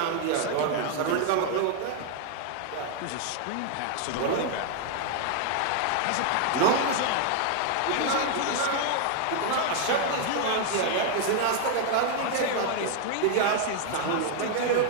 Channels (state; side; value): different; both; correlation 0.00